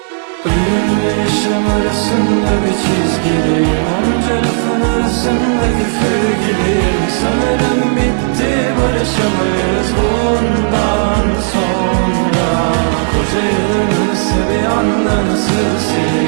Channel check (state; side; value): silent; left; 67 dB below the other